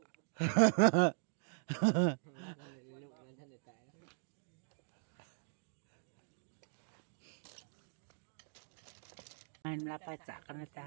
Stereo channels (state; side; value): silent; left; digital silence